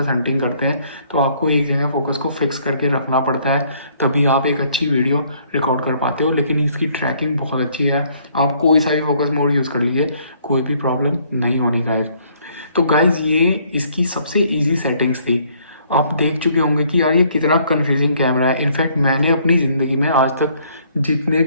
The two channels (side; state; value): both; inverted; correlation -0.64